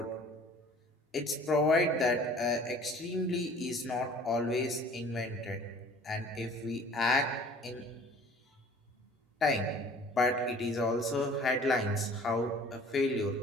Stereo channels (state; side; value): normal; both; correlation 0.49